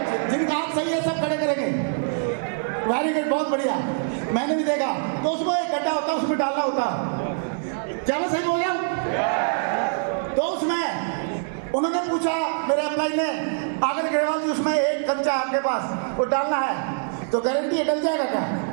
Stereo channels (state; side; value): silent; left; digital silence